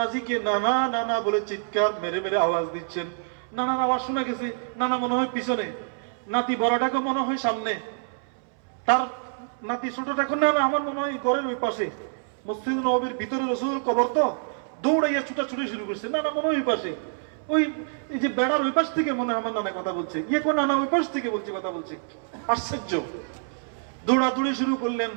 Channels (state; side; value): silent; left; 61 dB below the other